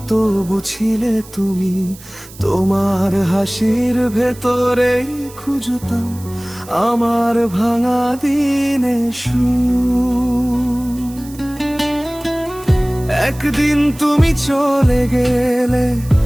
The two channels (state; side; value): noise; right; hiss, 20 dB below the sound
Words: তবু ছিলে তুমি। তোমার হাসির ভেতরেই খুঁজতাম আমার ভাঙা দিনে সুর। একদিন তুমি চলে গেলে,